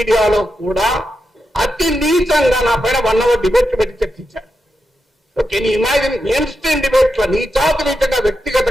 కూడా అతి నీచంగా నా పైన 1 hour డిబేట్ పెట్టి చర్చించారు. ఓకే, నీ ఇమాజిన్ మెయిన్ స్ట్రీమ్ డిబేట్ లో నీచాతు నీచంగా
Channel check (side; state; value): both; normal; correlation 0.87